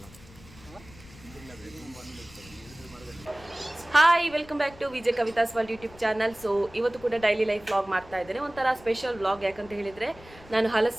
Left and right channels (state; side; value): noise; left; rumble, 21 dB below the sound